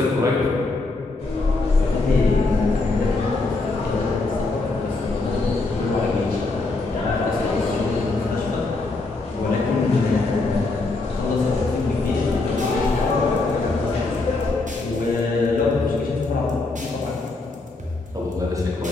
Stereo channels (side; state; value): right; quieter; 3.4 dB